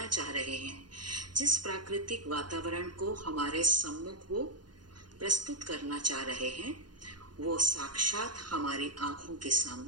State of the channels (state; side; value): late; left; 0.70 ms